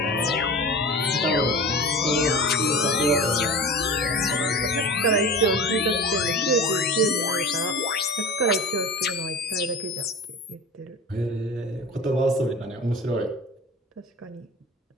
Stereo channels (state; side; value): normal; both; correlation 0.33